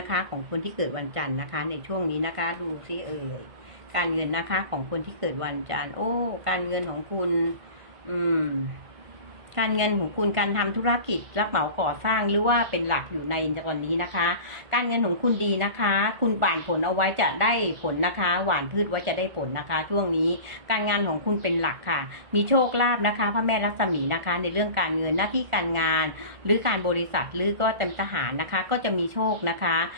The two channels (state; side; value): late; left; 1.4 ms